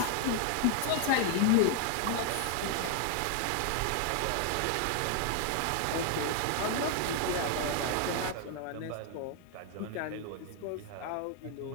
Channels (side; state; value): both; different; correlation 0.00